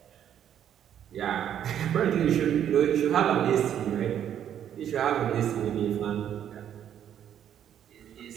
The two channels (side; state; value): left; quieter; 9.8 dB